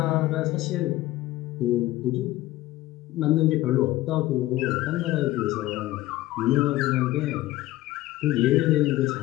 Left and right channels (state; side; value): quieter; right; 16.5 dB